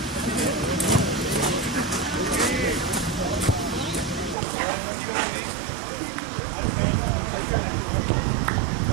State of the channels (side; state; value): left; drops out; at 4.4 s